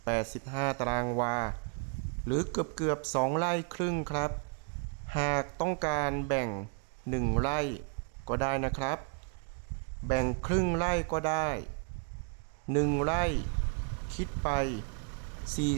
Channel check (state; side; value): quieter; left; 37.5 dB